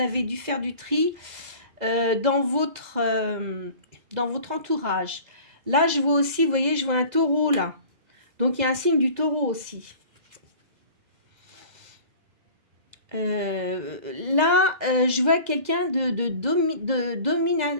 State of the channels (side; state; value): left; late; 2.0 ms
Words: dû faire du tri dans votre entourage. Là, je vois aussi, vous voyez, je vois un taureau là. Donc il y a un signe du taureau aussi. Là, je vois quelqu'un